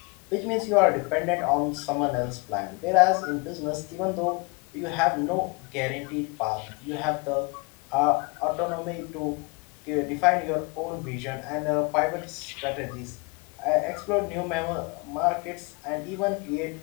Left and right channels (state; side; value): quieter; right; 29.8 dB